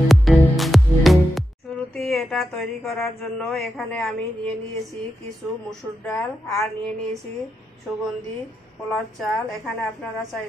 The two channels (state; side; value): normal; both; correlation 0.87